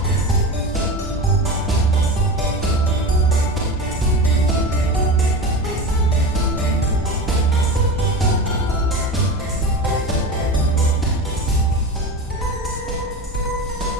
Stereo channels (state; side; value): normal; both; correlation 0.27